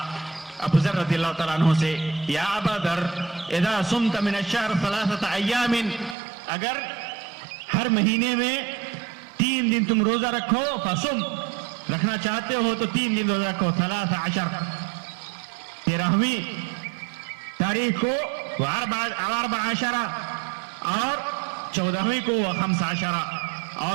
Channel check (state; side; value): drops out; left; at 6.2 s